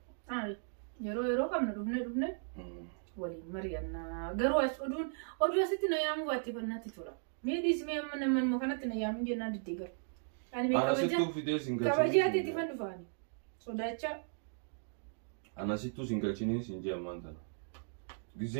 yeroo kamna dhufne waliin mari'annaa garuu as oduu asitti na yaamu baatti fannatti tura meedis mee amma man kanatti na yaamu jennaan diddeegar ani mee kabajaati itti fan dhufaani sodacha anasittu singalchini sinje amantana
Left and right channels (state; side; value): silent; left; digital silence